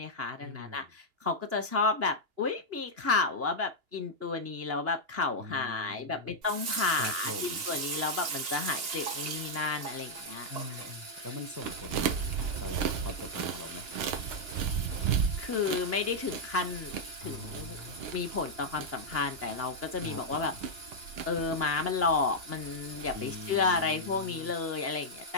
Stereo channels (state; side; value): late; left; 2.9 ms